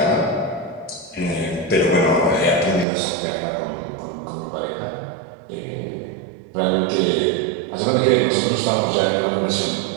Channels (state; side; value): drops out; left; at 2.9 s